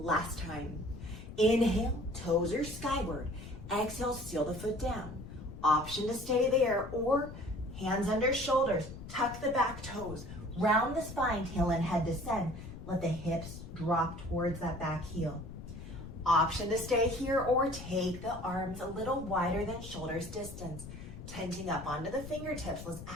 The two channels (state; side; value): noise; left; rumble, 12 dB below the sound